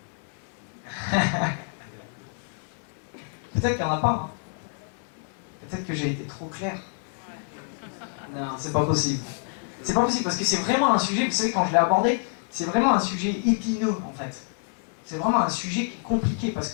Peut-être qu'il n'y en a pas. Hein. Peut-être que j'ai été trop clair. Non, c'est pas possible. C'est pas possible parce que c'est vraiment un sujet, vous savez, quand je l'ai abordé, c'est vraiment un sujet épineux en fait. C'est vraiment un sujet qui est compliqué parce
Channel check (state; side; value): silent; right; 60 dB below the other